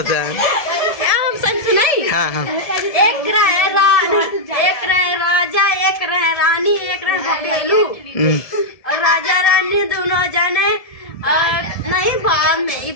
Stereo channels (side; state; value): right; late; 1.7 ms